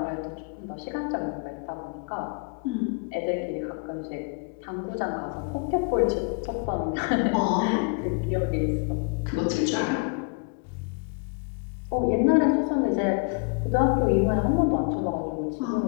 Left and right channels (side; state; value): right; quieter; 35.1 dB